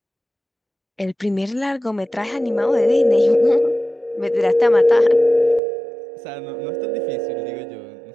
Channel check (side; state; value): left; drops out; at 5.6 s